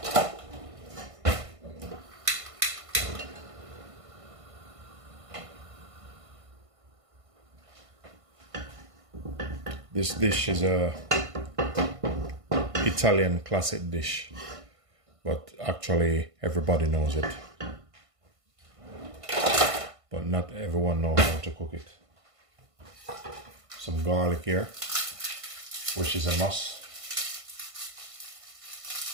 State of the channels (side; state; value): left; late; 1.5 ms